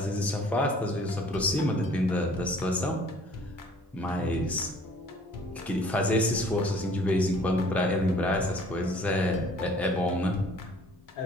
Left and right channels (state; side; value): normal; both; correlation 0.54